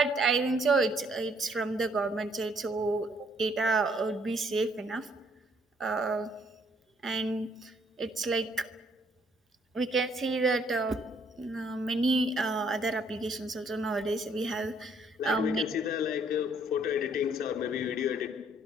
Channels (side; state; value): both; normal; correlation 0.65